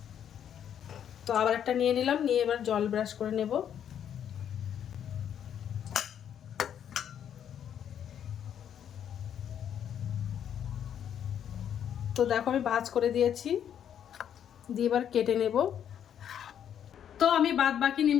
তো আবার একটা নিয়ে নিলাম। নিয়ে এবার জল ব্রাশ করে নেব। তো দেখো আমি ভাঁজ করে দিয়েছি। দিয়ে এবার কেটে নেব। তো আমি বাদ বাকি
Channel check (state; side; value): quieter; right; 9.2 dB